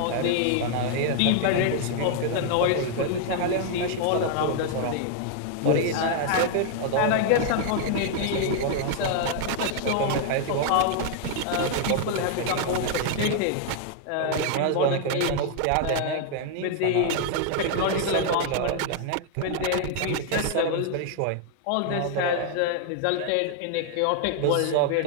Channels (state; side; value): different; both; correlation 0.00